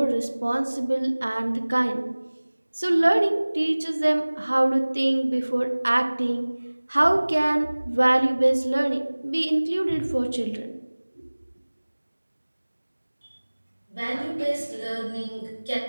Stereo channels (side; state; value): both; inverted; correlation -1.00